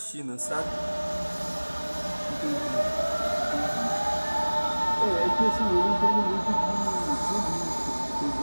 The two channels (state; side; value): inverted; both; correlation -1.00